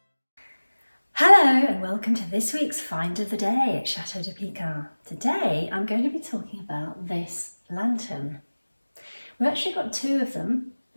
Hello and welcome to this week's Find of the Day at Chateau de Pican. Today I'm going to be talking about this lantern. We've actually got two of them.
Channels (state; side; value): inverted; both; correlation -1.00